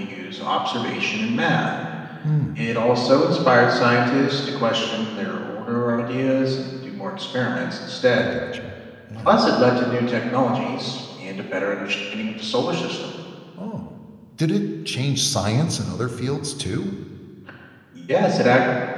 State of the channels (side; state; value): both; identical; correlation 1.00